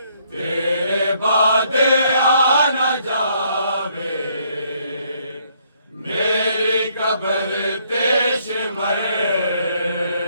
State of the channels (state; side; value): inverted; both; correlation -0.69